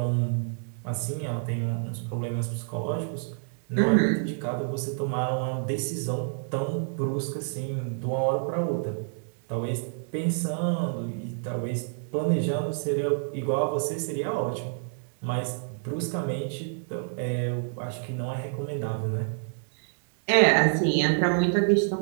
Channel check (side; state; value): left; silent; digital silence